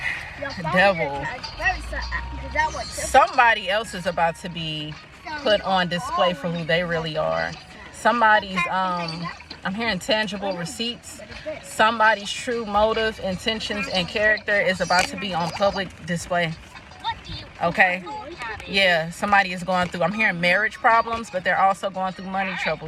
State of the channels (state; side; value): identical; both; correlation 1.00